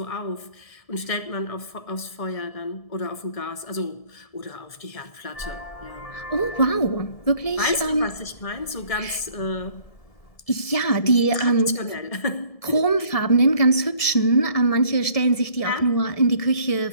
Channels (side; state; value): right; late; 1.7 ms